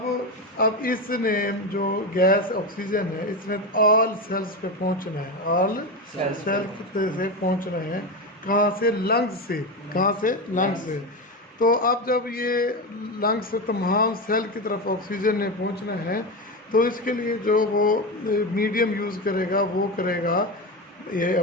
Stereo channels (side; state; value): both; normal; correlation 0.17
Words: इसने जो गैस ऑक्सीजन है इसने ऑल सेल्स पे पहुंचना है, ऑल सेल्स से पहुंचना है। कहाँ से? लंग्स से। कहाँ से? लंग्स से। तो अब जब ये लंग्स से तमाम सेल की तरफ ऑक्सीजन ने पहुंचना है तो इसके लिए जो वो मीडियम यूज़ करेगा वो करेगा ये